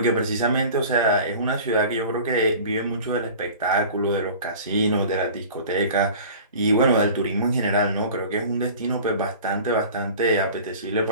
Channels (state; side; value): inverted; both; correlation -0.41